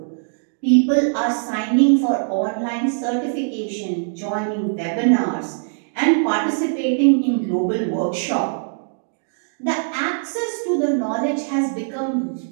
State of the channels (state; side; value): silent; left; digital silence